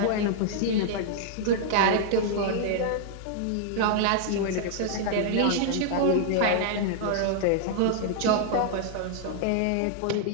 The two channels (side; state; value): both; different; correlation -0.01